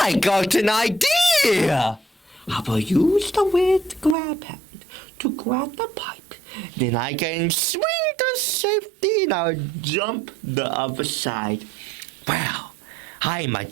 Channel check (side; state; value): left; drops out; at 4.2 s